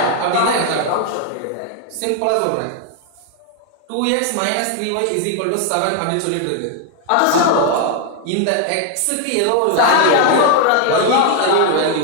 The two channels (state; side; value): different; both; correlation 0.00